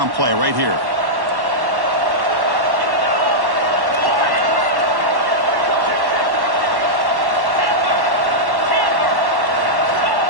play right here.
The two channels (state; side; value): late; left; 1.1 ms